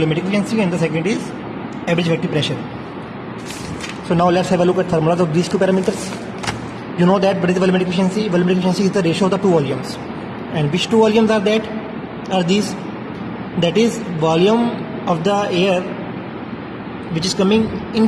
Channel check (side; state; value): both; identical; correlation 1.00